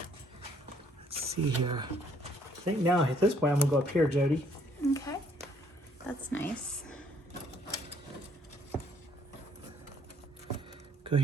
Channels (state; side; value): normal; both; correlation 0.64